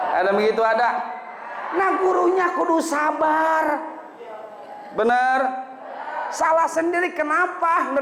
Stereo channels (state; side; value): identical; both; correlation 1.00